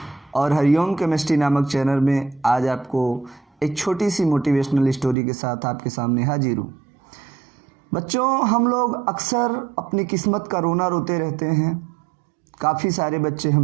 और हरिओम केमिस्ट्री नामक चैनल में आज आपको एक छोटी सी मोटिवेशनल स्टोरी के साथ आपके सामने हाजिर हूं। बच्चों, हम लोग अक्सर अपनी किस्मत का रोना रोते रहते हैं। काफ़ी सारे बच्चे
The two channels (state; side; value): drops out; left; at 5.2 s